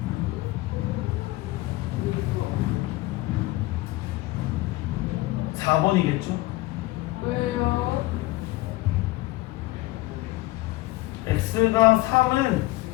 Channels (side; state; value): right; quieter; 19.0 dB